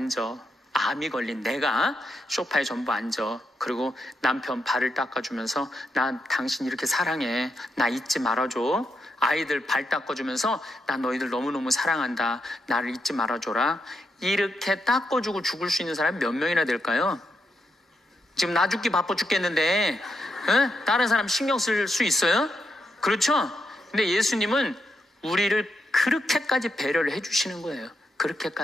암이 걸린 내가 소파에 전부 앉아. 그리고 남편 발을 닦아주면서, 나 당신 이렇게 사랑해. 나 잊지 말아줘. 아이들 발 닦아주면서, 나 너희들 너무너무 사랑한다. 나를 잊지 말아줘라. 이렇게 닦아주고 죽을 수 있는 사람이 몇 명이나 될까요? 지금 나 죽기 바빠 죽겠는데 다른 사람 신경 쓸 수 있어요? 그렇죠? 근데 예수님은 우리를 그렇게까지 배려를 해주시는 거예요.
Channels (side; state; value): both; normal; correlation 0.82